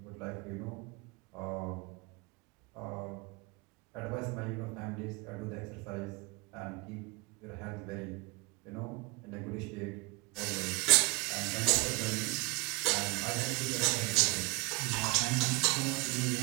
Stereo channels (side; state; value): left; quieter; 25.2 dB